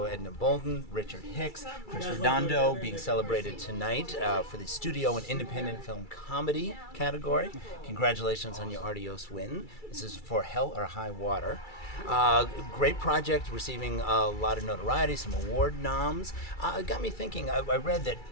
Edna Boldin, Richard Hicks, Chris Redondo, being celebrated tonight for the Studio and Independent Film Comedy category. Congratulations on your Artios win. This is for Hell or High Water. Great project, receiving a lot of notoriety, some award noms. It got me thinking, I read that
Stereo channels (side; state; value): right; late; 2.3 ms